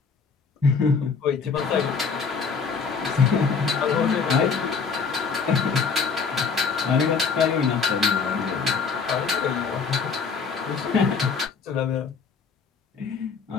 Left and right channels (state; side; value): quieter; right; 5.4 dB